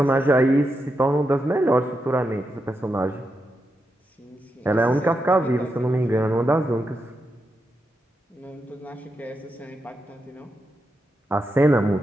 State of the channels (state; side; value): normal; both; correlation 0.86